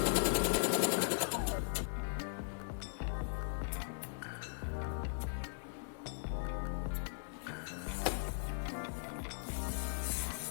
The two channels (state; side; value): silent; right; 52 dB below the other